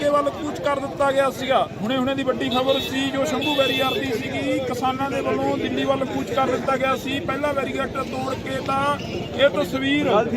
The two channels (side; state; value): both; identical; correlation 1.00